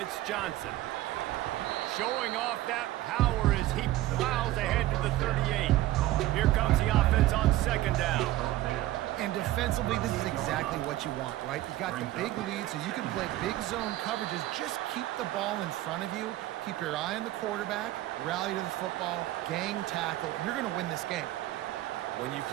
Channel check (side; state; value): left; quieter; 15.6 dB